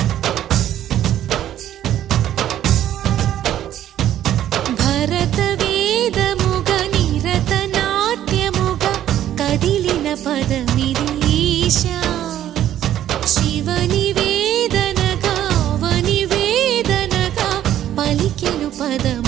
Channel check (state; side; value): quieter; left; 11.7 dB